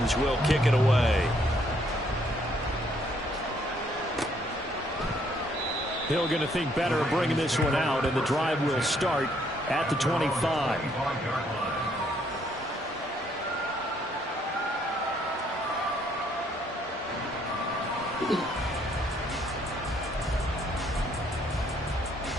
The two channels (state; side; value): normal; both; correlation 0.68